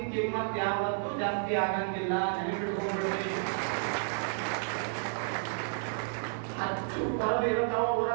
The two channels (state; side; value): silent; left; digital silence